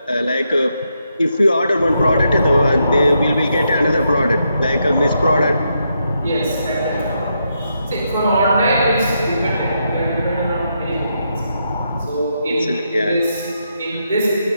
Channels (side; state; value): both; inverted; correlation -0.81